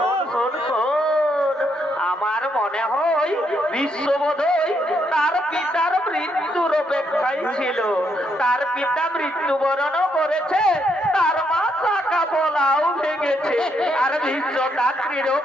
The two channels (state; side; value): normal; both; correlation 0.76